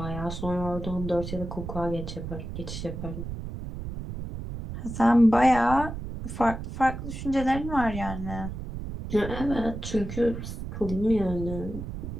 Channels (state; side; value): noise; right; rumble, 7 dB below the sound